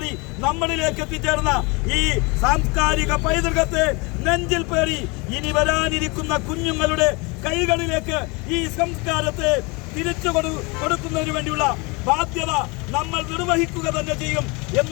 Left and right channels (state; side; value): quieter; right; 28.0 dB